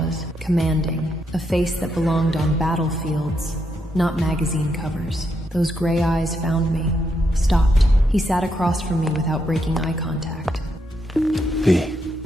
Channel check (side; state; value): both; normal; correlation 0.80